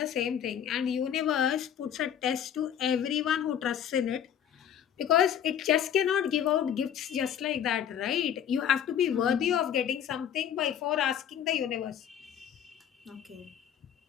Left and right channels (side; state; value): right; quieter; 9.4 dB